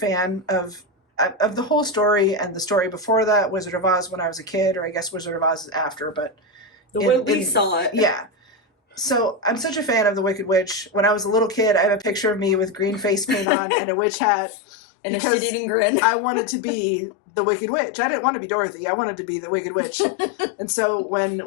of the whole story, and the story before that, Wizard of Oz, when I was a kid, or I guess Wizard of Oz is after, but the way we saw it. Yeah. So I'm such a fan of the Wicked Witch. When I was a little kid, I have a picture of me with green face paint on and a witch hat. And a shit-eating grin. I wanted to be the Wicked Witch. I didn't want to be Dorothy. I wanted to be the Wicked Witch. And so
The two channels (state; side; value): drops out; right; at 13.5 s